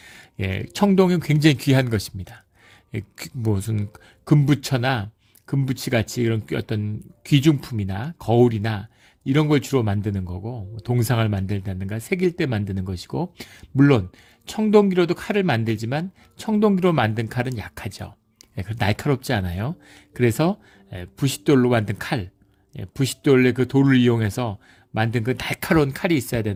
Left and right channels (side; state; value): both; identical; correlation 1.00